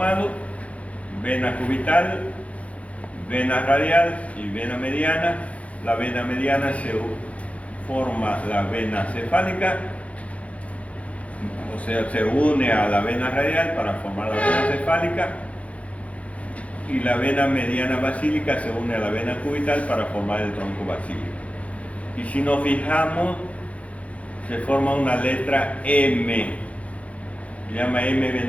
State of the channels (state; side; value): late; right; 0.065 ms